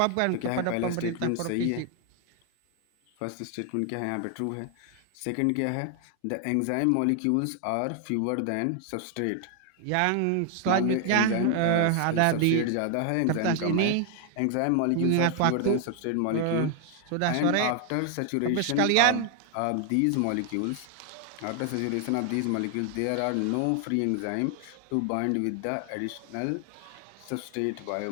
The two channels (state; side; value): different; both; correlation 0.00